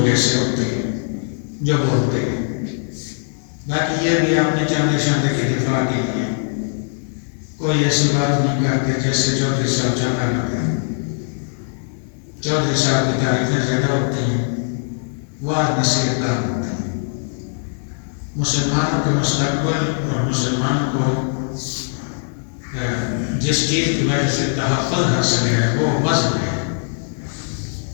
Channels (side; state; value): right; silent; digital silence